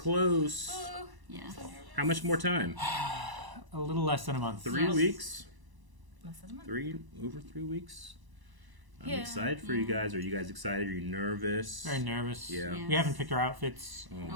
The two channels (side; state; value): left; late; 1.0 ms